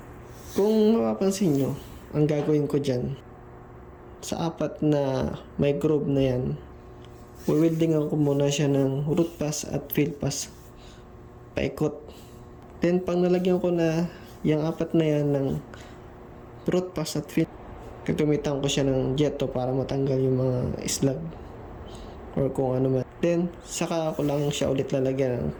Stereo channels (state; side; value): identical; both; correlation 1.00